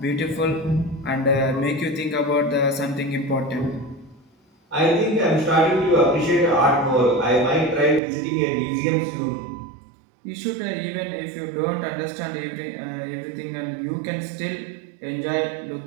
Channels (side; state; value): left; drops out; at 8.0 s